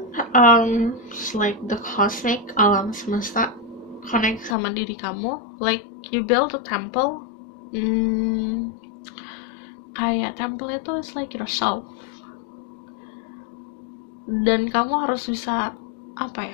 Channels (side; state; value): right; drops out; at 4.5 s